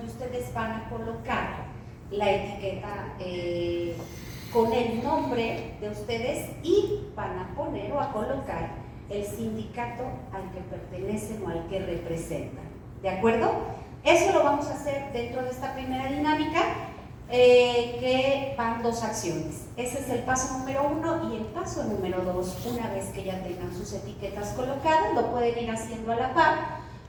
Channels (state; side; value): identical; both; correlation 1.00